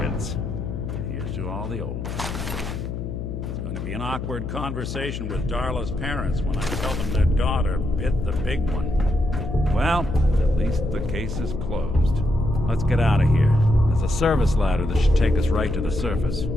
Here's to all the old. It's going to be an awkward conversation with Darla's parents when I tell them their daughter bit the big one. Well, at least the case is closed. Let's get out of here. There's a service ladder that should take us right to the surface.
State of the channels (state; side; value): noise; left; hum, 6 dB below the sound